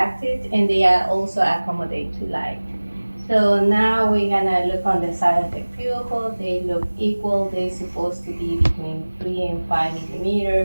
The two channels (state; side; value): inverted; both; correlation -1.00